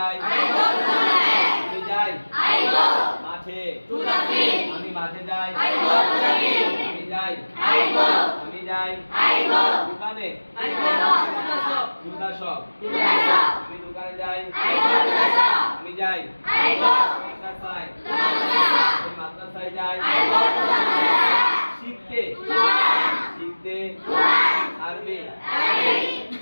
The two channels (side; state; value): both; inverted; correlation -1.00